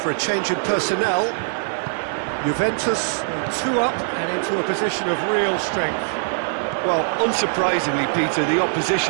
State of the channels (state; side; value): silent; left; digital silence